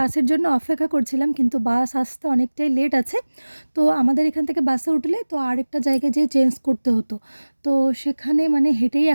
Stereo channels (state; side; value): inverted; both; correlation -1.00